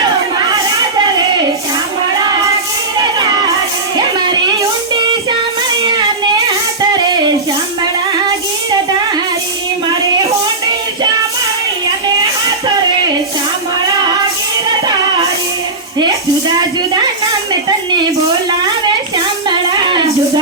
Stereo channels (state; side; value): quieter; left; 3.3 dB